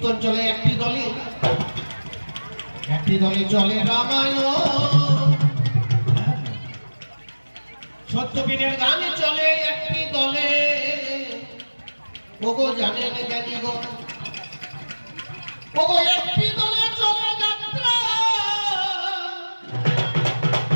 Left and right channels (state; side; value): inverted; both; correlation -1.00